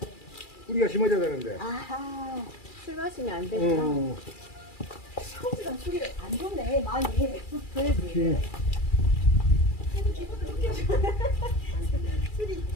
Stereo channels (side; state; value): right; late; 2.4 ms